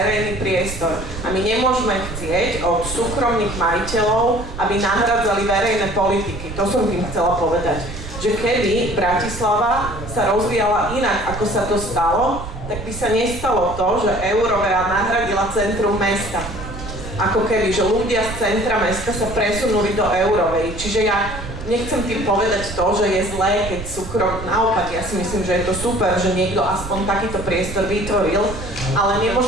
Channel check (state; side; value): noise; right; rumble, 10 dB below the sound